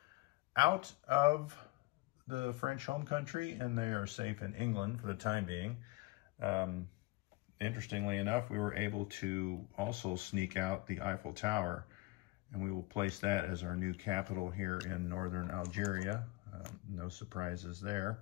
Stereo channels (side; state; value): right; quieter; 22.4 dB